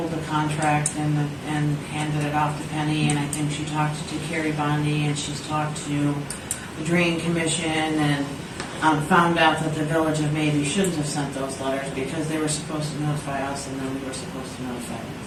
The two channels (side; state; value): both; identical; correlation 1.00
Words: the contract and handed it off to Penny, and I think she talked to Carrie Bondi, and she's talked to the Drain Commission, and found out that the Village of Maybe shouldn't have sent those letters because they were supposed to notify us, and then we were supposed to notify